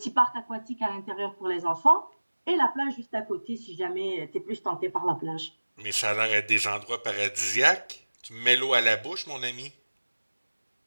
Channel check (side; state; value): both; inverted; correlation -1.00